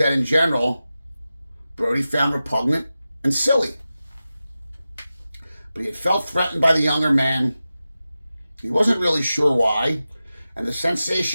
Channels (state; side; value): inverted; both; correlation -0.94